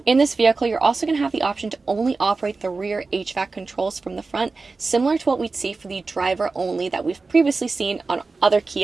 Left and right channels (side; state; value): left; quieter; 3.9 dB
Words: In this vehicle, you're also going to have the option to only operate the rear HVAC controls from the front, similar to what we'd see for the driver only that we've previously seen on other